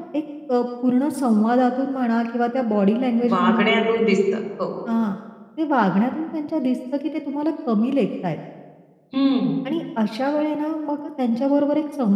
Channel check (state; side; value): identical; both; correlation 1.00